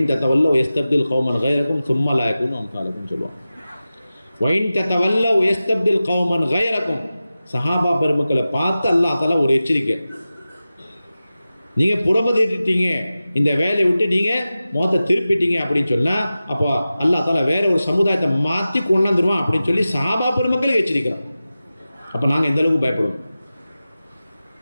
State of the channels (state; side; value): inverted; both; correlation -0.95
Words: தத்தவல்ல யஸ்தப்தில் கௌமன் கைரக்கும் சும்மா லா யகூனு அம்சாலக்கும் சொல்லுவாங்க. வைன் தத்தவல்ல யஸ்தப்தில் கௌமன் கைரக்கும், சஹாபா பெருமக்களை பார்த்து அல்லாஹ் தஆலா ஒரு எச்சரிக்கை, நீங்கள் புறமதிட்டீங்க, இந்த வேலையை விட்டு நீங்கள் முகத்தை திருப்பிட்டீங்க அப்படின்னு சொன்னால் அப்போ அல்லாஹ் தஆலா வேற ஒரு சமுதாயத்தை மாற்றி கொண்டாந்துருவான் அப்படின்னு சொல்லி சஹாபா பெருமக்களை எச்சரிக்கிறோம். அப்போ நாங்கள் எந்த அளவுக்கு பயப்படுவோம்,